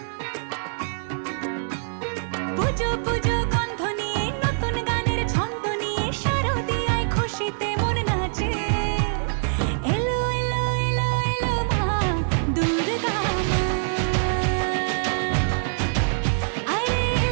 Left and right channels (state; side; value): silent; left; digital silence